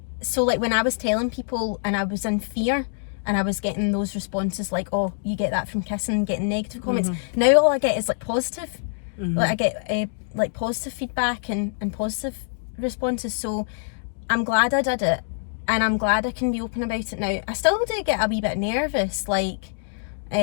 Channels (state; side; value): silent; right; digital silence